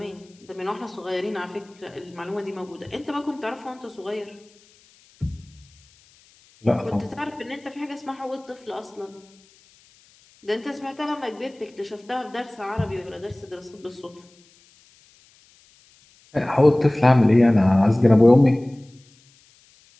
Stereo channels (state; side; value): noise; left; hiss, 30 dB below the sound